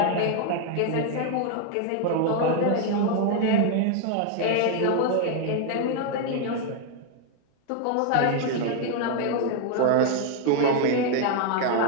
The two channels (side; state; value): both; different; correlation 0.01